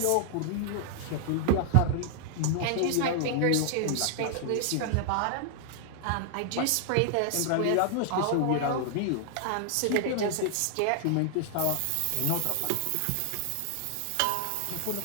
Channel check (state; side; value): different; both; correlation 0.00